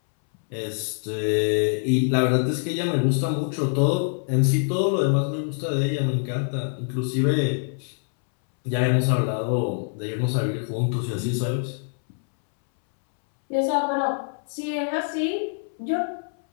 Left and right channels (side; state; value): right; silent; 62 dB below the other